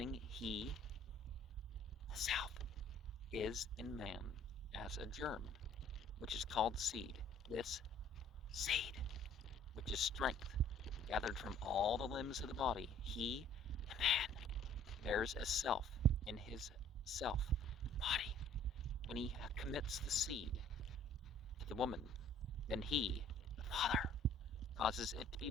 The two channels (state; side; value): normal; both; correlation 0.55